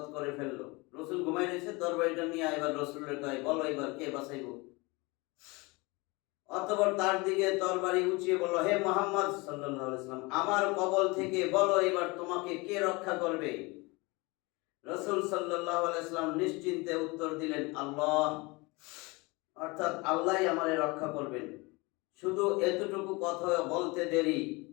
করে ফেললো। রসুল ঘুমাই রয়েছে, তরবারিটা নিয়ে এবার রসুলের কয়, বলো এবার কে বাঁচাইব। অতঃপর তার দিকে তরবারি উঁচিয়ে বলল, হে মুহাম্মদ সাল্লাল্লাহু আলাইহি ওয়াসাল্লাম, আমার কবল থেকে বলো এবার তোমাকে কে রক্ষা করবে। রসুল সাল্লাল্লাহু আলাইহি ওয়াসাল্লাম নিশ্চিন্তে উত্তর দিলেন, আল্লাহ, অর্থাৎ আল্লাহই আমারে রক্ষা করবেন। শুধু এতটুকু কথা বলতে দেরি,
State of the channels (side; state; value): right; quieter; 25.4 dB